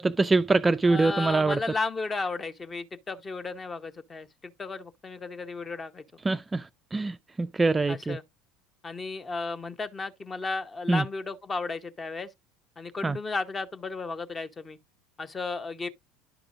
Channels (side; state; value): both; normal; correlation 0.92